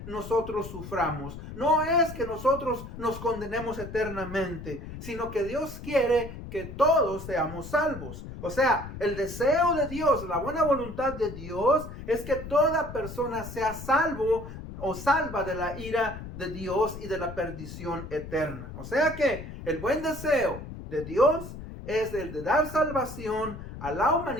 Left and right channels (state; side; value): noise; left; rumble, 11 dB below the sound